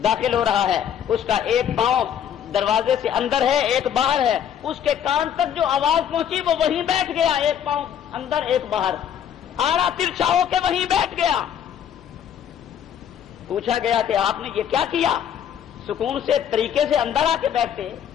داخل ہو رہا ہے، اس کا ایک پاؤں دروازے سے اندر ہے، ایک باہر ہے، اس کے کان تک جو آواز پہنچی وہ وہیں بیٹھ گیا، ایک پاؤں اندر ایک باہر، آڑا ترچھا ہو کے وہیں بیٹھ گیا۔ پوچھا گیا کہ آپ نے یہ کیا کیا؟ سکون سے طریقے سے اندر آ کے بیٹھتے۔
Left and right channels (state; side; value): quieter; right; 9.2 dB